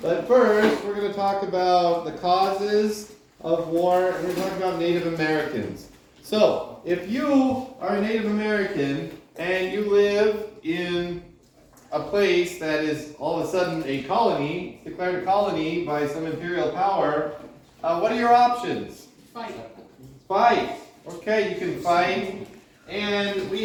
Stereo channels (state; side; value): identical; both; correlation 1.00